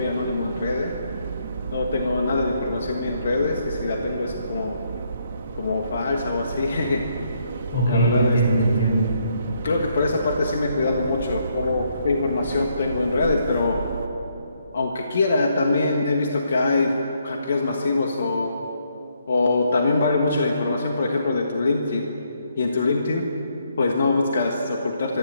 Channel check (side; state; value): both; inverted; correlation -0.74